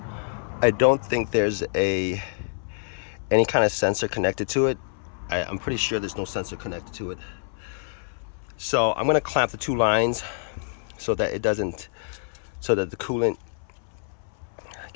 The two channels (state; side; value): silent; right; 61 dB below the other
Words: I don't think there's any kind of sensor connected to it. I'm pretty sure there's no sensor connected to it. So I'm gonna clamp the two lines so that the coolant